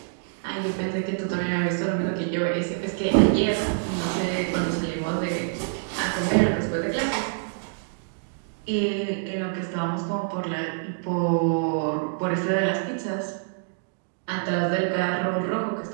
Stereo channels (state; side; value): silent; left; digital silence